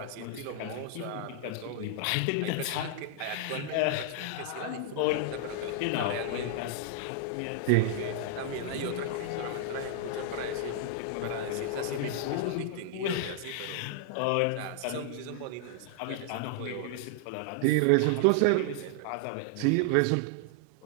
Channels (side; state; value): both; different; correlation -0.01